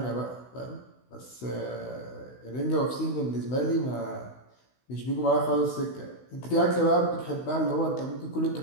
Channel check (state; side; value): late; right; 16 ms